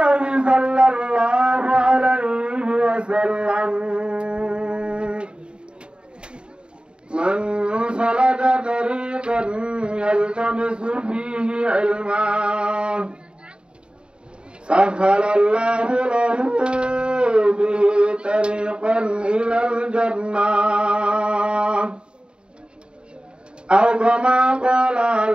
صلى الله عليه وسلم من سلك طريقا يلتمس فيه علما سهل الله له به طريقا إلى الجنة أو كما قال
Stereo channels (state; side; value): late; left; 0.052 ms